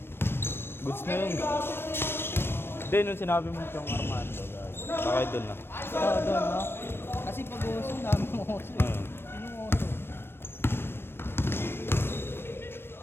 Goods na yun. Hindi, nung sinabi mo yung Armando, bakit doon na? Oo, doon no? Kasi pag uso, dami ng uso. Yung uso.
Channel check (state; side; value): late; right; 0.11 ms